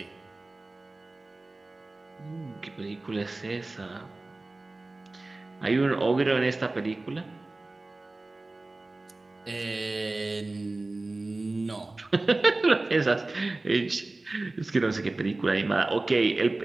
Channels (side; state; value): left; quieter; 3.1 dB